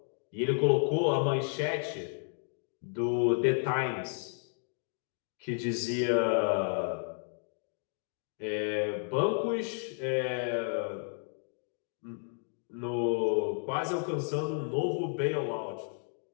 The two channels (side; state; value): right; silent; 56 dB below the other